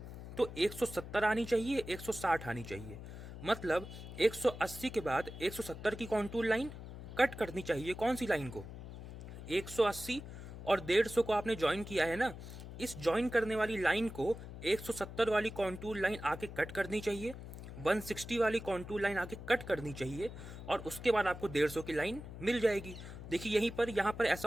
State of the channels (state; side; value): noise; left; hum, 11 dB below the sound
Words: तो 170 आनी चाहिए, 160 आनी चाहिए। मतलब 180 के बाद 170 की कॉन्टूर लाइन कट करनी चाहिए। कौन सी लाइन को? 180 और 150 को आपने ज्वाइन किया है ना, इस ज्वाइन करने वाली लाइन को 170 वाली कॉन्टूर लाइन आके कट करनी चाहिए, 160 वाली कॉन्टूर लाइन आके कट करनी चाहिए, और उसके बाद आपको 150 की लाइन मिल जाएगी। देखिए यहीं पर, यहाँ पर